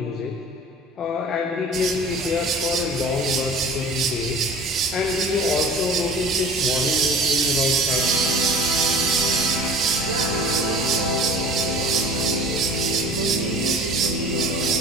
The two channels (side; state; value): both; normal; correlation 0.42